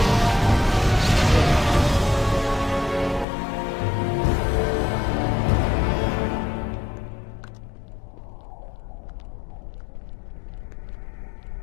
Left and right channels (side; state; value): right; drops out; at 3.2 s